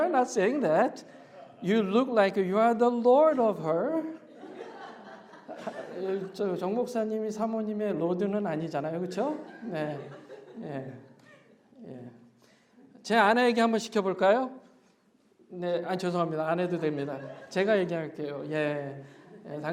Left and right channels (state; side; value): identical; both; correlation 1.00